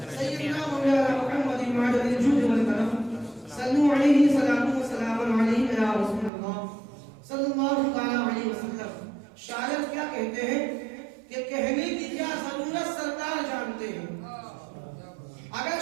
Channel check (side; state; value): left; drops out; at 6.3 s